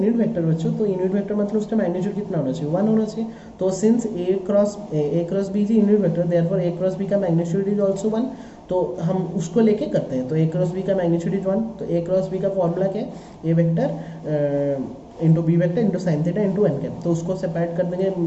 vector बच्चों, तो यूनिट वेक्टर मतलब उसका मैग्नीट्यूड कितना होना चाहिए, 1 होना चाहिए। तो since A cross B is unit vector, therefore A cross B का मैग्नीट्यूड इज आल्सो 1, तो हम उसको लेके करते हैं। तो ए क्रॉस बी का मैग्नीट्यूड इज 1, तो ए क्रॉस बी का फॉर्मूला क्या है, A vector into B vector into sine theta into N cap, तो उसको सेपरेट कर देंगे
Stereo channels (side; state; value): both; identical; correlation 1.00